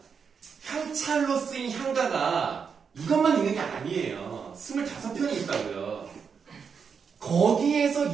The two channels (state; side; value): quieter; left; 6.2 dB